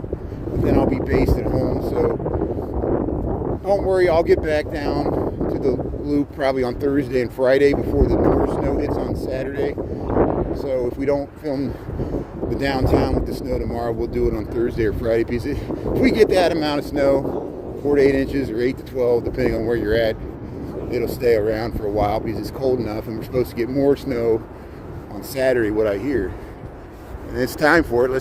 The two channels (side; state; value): both; identical; correlation 1.00